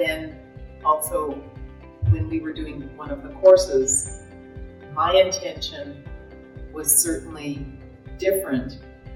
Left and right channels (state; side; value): identical; both; correlation 1.00